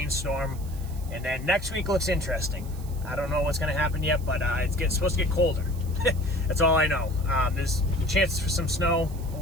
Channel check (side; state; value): right; noise; hiss, 20 dB below the sound